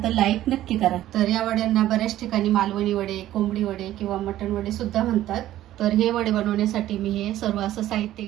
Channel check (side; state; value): left; quieter; 13.7 dB